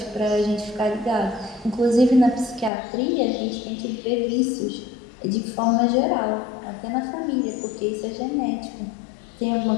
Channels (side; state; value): right; drops out; at 2.7 s